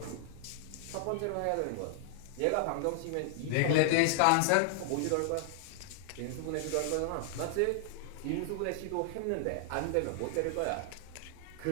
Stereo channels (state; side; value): different; both; correlation -0.01